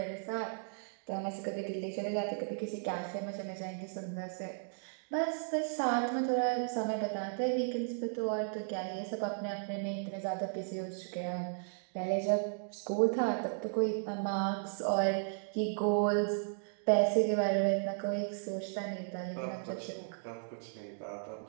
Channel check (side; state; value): left; silent; digital silence